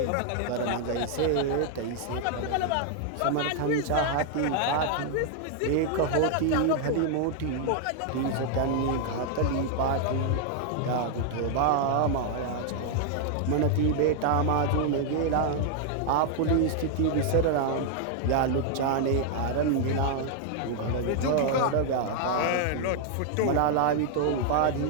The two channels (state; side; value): different; both; correlation 0.00